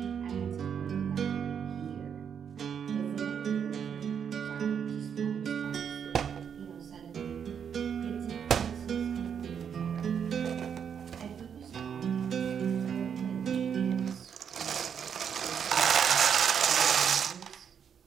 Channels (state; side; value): quieter; left; 7.7 dB